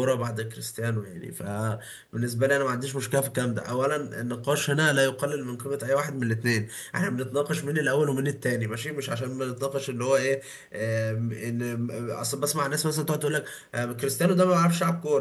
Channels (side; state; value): both; identical; correlation 1.00